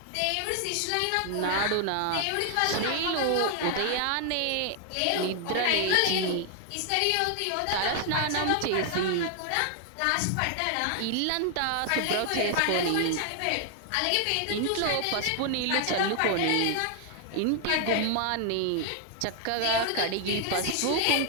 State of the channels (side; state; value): both; different; correlation 0.00